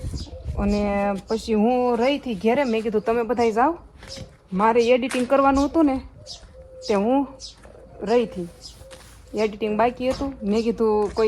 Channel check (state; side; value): identical; both; correlation 1.00